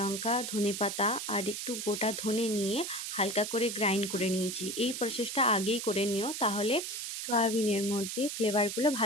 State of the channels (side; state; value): right; noise; hiss, 5 dB below the sound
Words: ধনেপাতা আর একটু গোটা ধনে নিয়ে হালকা করে গ্রাইন্ড করে নিয়েছি। এই প্রসেসটা আগেই করে নিও, তাহলে সয়াবিনের মধ্যে ফ্লেভারগুলো